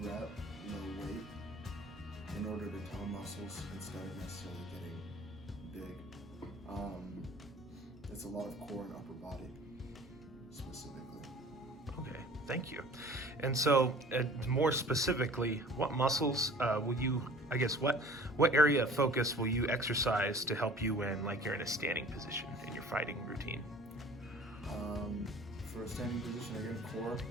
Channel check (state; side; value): normal; both; correlation 0.47